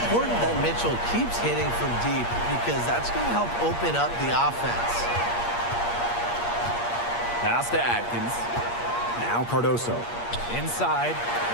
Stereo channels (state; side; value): late; right; 8.5 ms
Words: that Mitchell keeps hitting from deep because that's going to help open up the offense. Pass to Atkins. Now Cardoso. Inside.